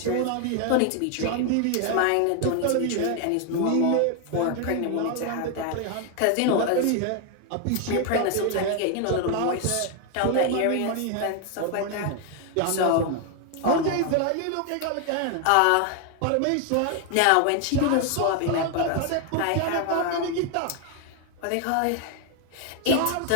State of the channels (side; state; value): both; different; correlation 0.01